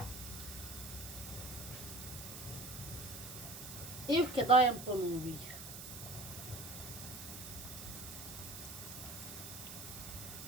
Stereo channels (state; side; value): noise; right; hiss, 10 dB below the sound